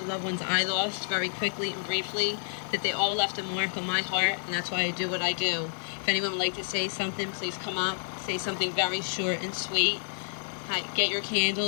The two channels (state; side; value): silent; right; digital silence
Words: loved ones I lost very quickly and briefly, that they all left a mark on my heart, and that's why I do what I do. If anyone would like to say something, please come up. Say something very short and sweet. Hi, get your